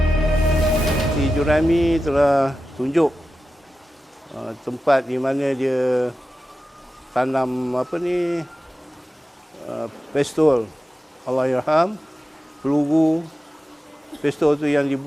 Si Jurami telah tunjuk tempat di mana dia tanam pistol, Allahyarham, peluru. Pistol tu yang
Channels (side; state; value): both; normal; correlation 0.93